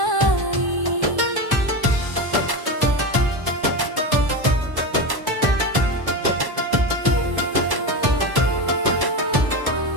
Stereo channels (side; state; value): left; late; 1.1 ms